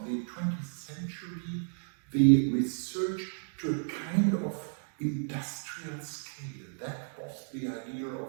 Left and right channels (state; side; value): silent; left; digital silence